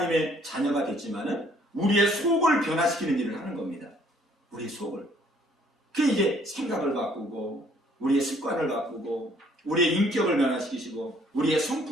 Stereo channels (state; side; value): normal; both; correlation 0.62